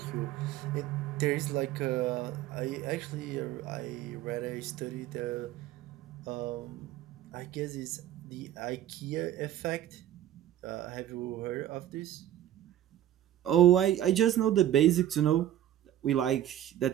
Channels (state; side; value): quieter; left; 12.2 dB